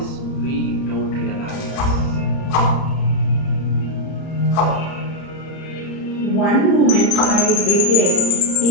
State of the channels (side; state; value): right; late; 30 ms